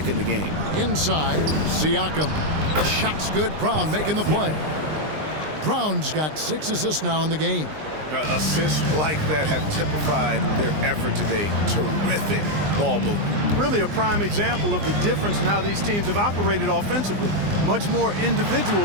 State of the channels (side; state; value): left; late; 20 ms